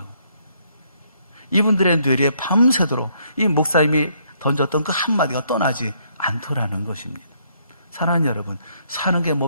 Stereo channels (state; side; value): inverted; both; correlation -0.70